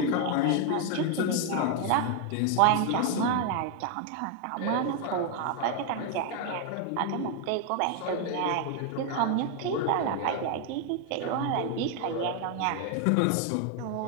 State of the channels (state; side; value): different; both; correlation 0.01